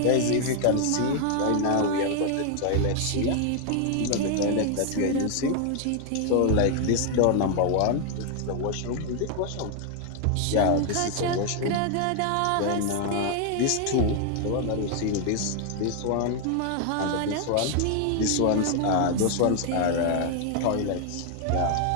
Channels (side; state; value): both; different; correlation 0.00